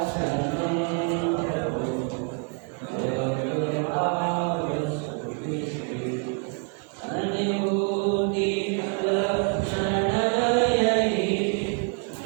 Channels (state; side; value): quieter; left; 37.6 dB